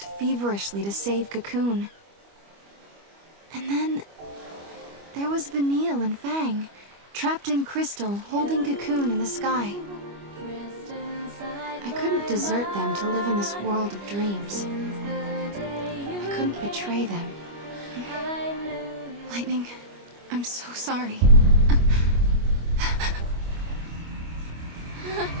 feverishly to save Cocoon. And then there was Vanille and Fang, trapped in crystal, holding Cocoon in the sky. I couldn't desert them to live in this world of dreams. I couldn't betray them. Lightning, I'm so sorry.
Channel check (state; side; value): late; left; 25 ms